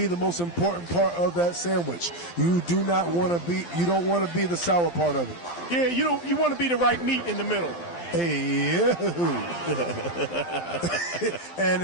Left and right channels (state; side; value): late; right; 12 ms